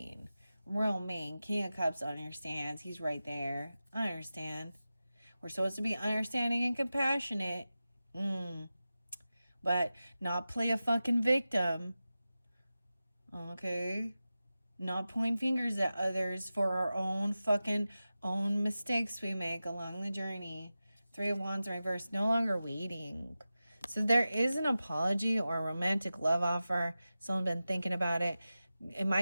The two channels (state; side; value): inverted; both; correlation -0.94